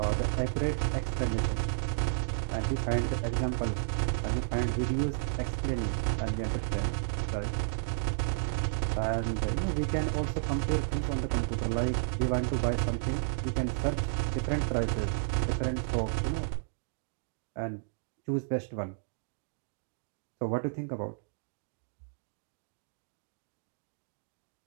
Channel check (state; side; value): silent; left; digital silence